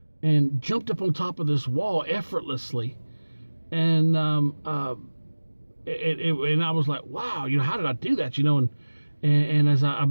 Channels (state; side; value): inverted; both; correlation -1.00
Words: and jumped up on top of this wall effortlessly. And and I was like, wow, you know, how did I do that? You know, and as I